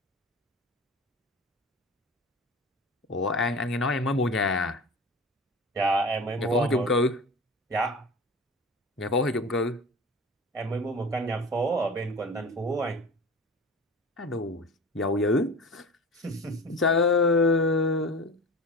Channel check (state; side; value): normal; both; correlation 0.34